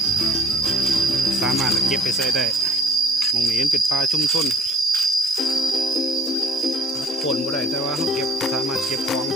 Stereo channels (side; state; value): both; normal; correlation 0.54